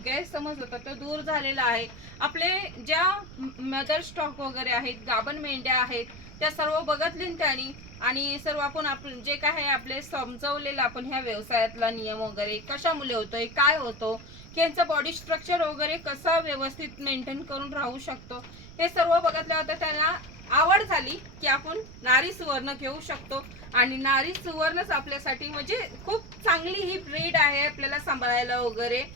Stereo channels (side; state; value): right; noise; rumble, 16 dB below the sound